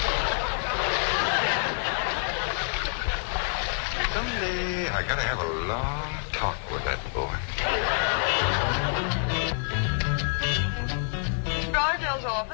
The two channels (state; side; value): silent; right; digital silence